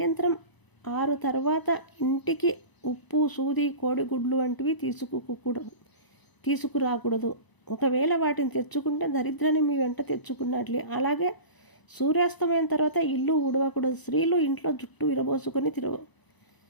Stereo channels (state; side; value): late; right; 1.0 ms